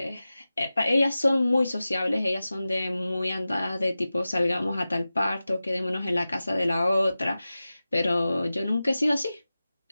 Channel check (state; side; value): inverted; both; correlation -0.95